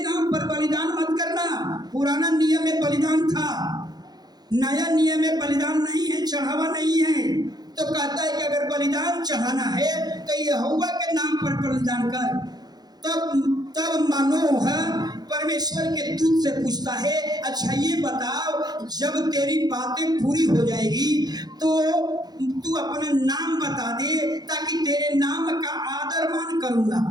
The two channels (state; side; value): late; left; 0.19 ms